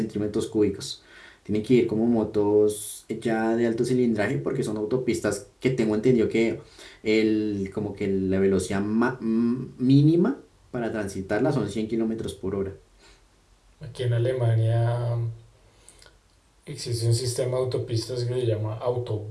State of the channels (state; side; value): identical; both; correlation 1.00